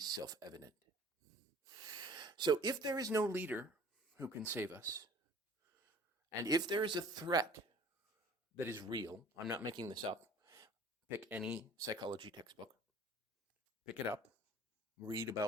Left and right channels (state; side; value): normal; both; correlation 0.48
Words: self-evident. So if there is no leader who can save us, and if there is a threat that is real, I'm not making this up, pick any psychology textbook, pick it up, read